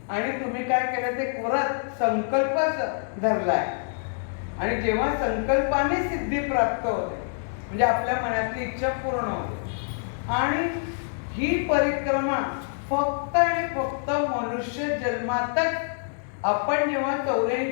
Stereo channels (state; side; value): silent; right; digital silence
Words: आणि तुम्ही काय केलं ते व्रत संकल्प धरलाय। आणि जेव्हा संकल्पाने सिद्धी प्राप्त होते म्हणजे आपल्या मनातली इच्छा पूर्ण होते। आणि ही परिक्रमा फक्त आणि फक्त मनुष्य जन्मातच आपण जेव्हा